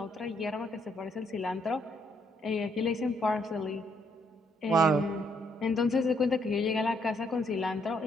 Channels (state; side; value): normal; both; correlation 0.71